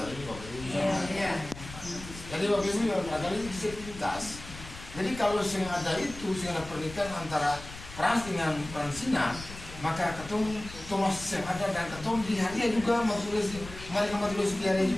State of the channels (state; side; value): noise; left; rumble, 14 dB below the sound